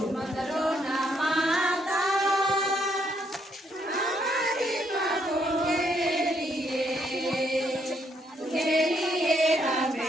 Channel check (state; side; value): normal; both; correlation 0.73